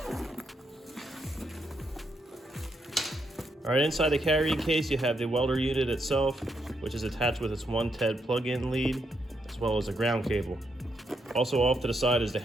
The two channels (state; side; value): normal; both; correlation 0.79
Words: All right, inside the carrying case, you have the welder unit itself, which is attached with its 110 plug-in lead, as well as a ground cable. Also off to the side is the